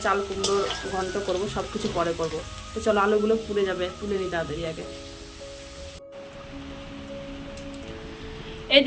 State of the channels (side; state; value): both; identical; correlation 1.00